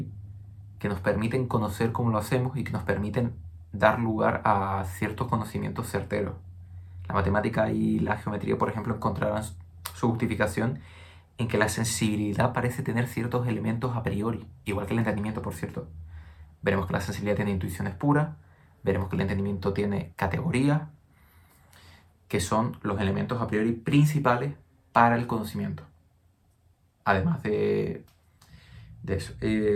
que nos permiten conocer cómo lo hacemos y que nos permiten dar lugar a ciertos conocimientos certeros. La matemática y la geometría, por ejemplo, encontrarán su justificación en que la sensibilidad parece tener ciertos elementos a priori, igual que el entendimiento, por cierto. Veremos que la sensibilidad tiene intuiciones puras, veremos que el entendimiento tiene categorías, que son los elementos a priori principales para el conocimiento. Además de eso.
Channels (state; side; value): identical; both; correlation 1.00